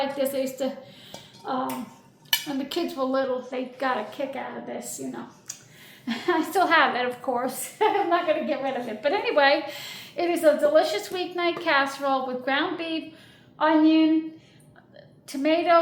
this. I used to, when the kids were little, they got a kick out of this, you know. I still have it, of course. I'm not going to get rid of it. But anyway, it is a delicious weeknight casserole with ground beef, onion,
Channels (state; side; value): identical; both; correlation 1.00